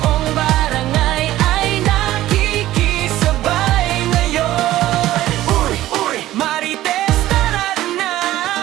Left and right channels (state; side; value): quieter; left; 14.8 dB